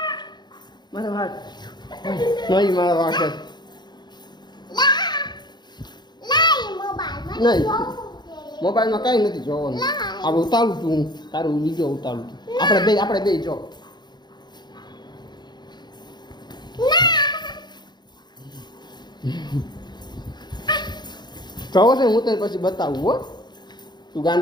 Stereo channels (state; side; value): late; right; 0.21 ms